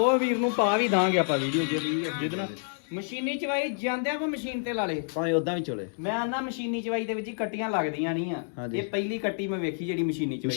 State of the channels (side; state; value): right; silent; 59 dB below the other